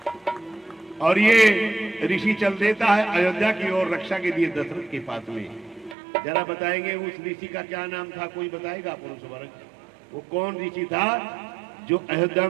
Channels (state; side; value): drops out; left; at 6.0 s